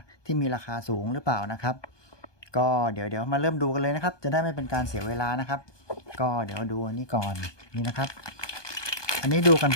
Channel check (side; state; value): right; late; 1.2 ms